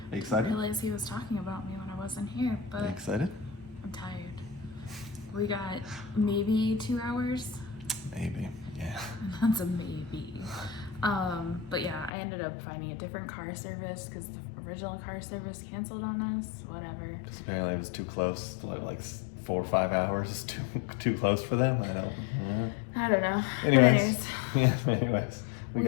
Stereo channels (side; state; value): right; drops out; at 12.1 s